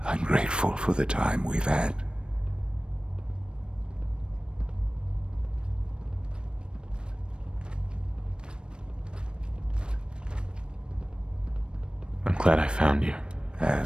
I'm grateful for the time we've had. I'm glad I found you.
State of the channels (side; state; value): left; late; 0.054 ms